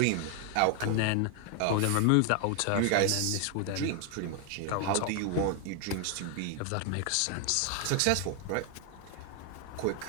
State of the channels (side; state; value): both; different; correlation 0.00